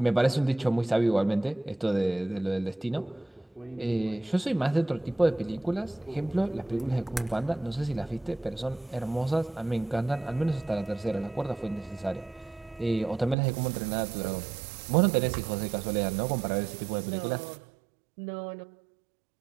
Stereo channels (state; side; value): drops out; left; at 13.4 s